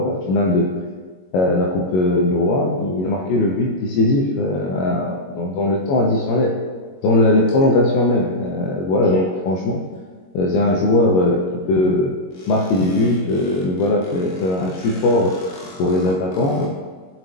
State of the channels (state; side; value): late; right; 22 ms